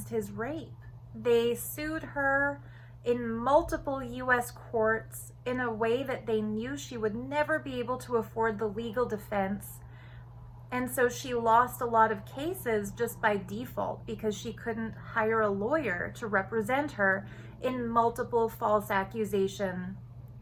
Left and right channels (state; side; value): identical; both; correlation 1.00